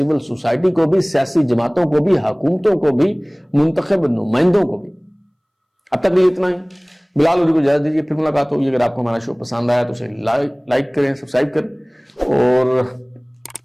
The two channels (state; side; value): identical; both; correlation 1.00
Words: سوسائٹی کو بھی، سیاسی جماعتوں کو بھی، حکومتوں کو بھی، منتخب نمائندوں کو بھی۔ اب تک یہ اتنا ہی، بلال لودھی کو اجازت دیجیے، پھر ملاقات ہوگی۔ اگر آپ کو ہمارا شو پسند آیا تو اسے لائک کریں، سبسکرائب کریں، اور